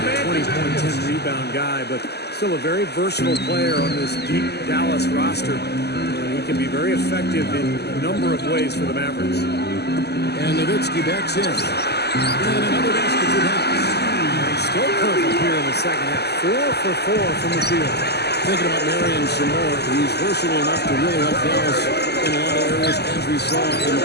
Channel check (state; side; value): late; right; 0.48 ms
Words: 20-point, 10-rebound guy, but still a very versatile player on this deep Dallas roster. He can be very effective in a number of ways for the Mavericks. And Nowitzki backs in. And another basket for Dallas. Still perfect here in the second half. 4 for 4 from the field. Thinking about Marion some more, he's versatile enough to really help Dallas in a lot of areas, as we saw in the